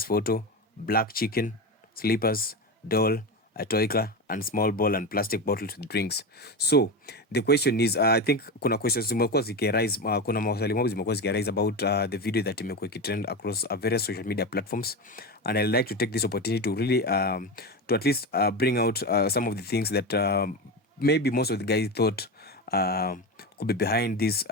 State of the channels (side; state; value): both; normal; correlation 0.20